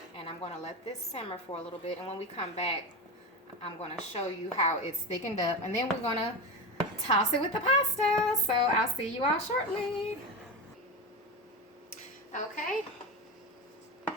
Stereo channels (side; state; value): both; normal; correlation 0.21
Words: And I'm going to let this simmer for a little bit. And when we come back, I'm going to show you how it's thickened up. And then we're going to toss it with the pasta. So I'll see you all shortly. Okay.